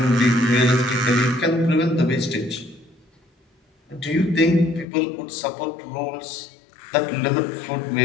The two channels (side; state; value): right; drops out; at 4.9 s